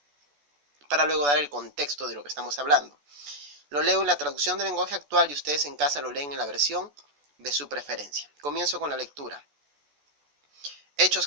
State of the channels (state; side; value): late; left; 14 ms